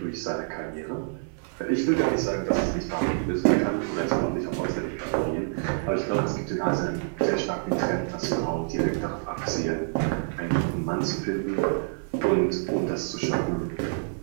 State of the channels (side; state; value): left; silent; digital silence